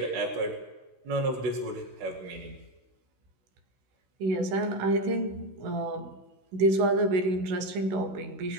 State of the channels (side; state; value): left; late; 16 ms